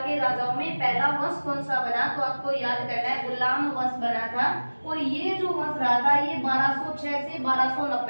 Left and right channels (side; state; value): both; inverted; correlation -1.00